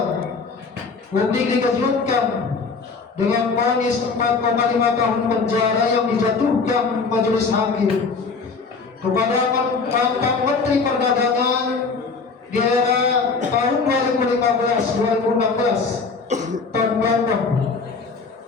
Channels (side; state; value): right; quieter; 4.6 dB